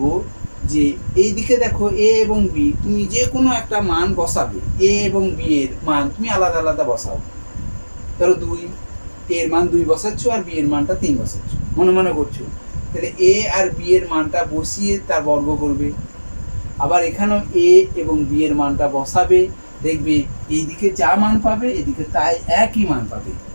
যে এইদিকে দেখো a এবং b, তুমি যে কোনো একটা মান বসাবে, a এবং b এর মান তুমি আলাদা আলাদা বসাও। ধরো 2, এর মান 2 বসাচ্ছ আর b এর মানটা 3 বসাচ্ছ, মনে মনে করছো। তাহলে a আর b এর মানটা বসিয়ে তার বর্গ করবে। আবার এখানেও a এবং b এর মানটা বসাবে, দেখবে এইদিকে যা মান পাবে এদিকে তাই একই মান পাবে,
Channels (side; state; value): both; inverted; correlation -1.00